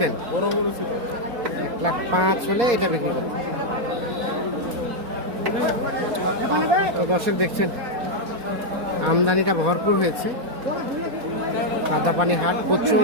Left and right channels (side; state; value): left; late; 4.2 ms